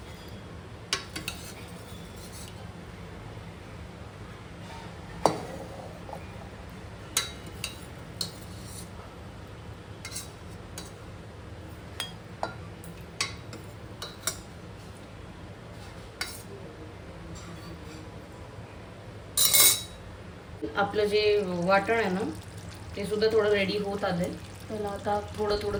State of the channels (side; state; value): both; identical; correlation 1.00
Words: आपलं जे वाटण आहे ना ते सुद्धा थोडं रेडी होत आलंय. त्याला आता थोडं थोडं